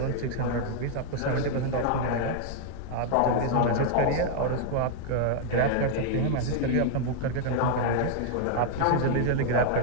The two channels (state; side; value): different; both; correlation 0.00